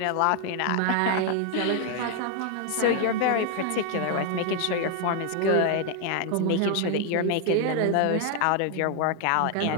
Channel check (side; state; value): both; different; correlation 0.00